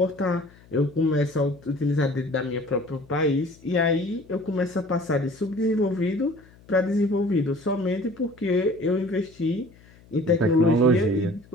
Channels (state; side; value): noise; left; hum, 26 dB below the sound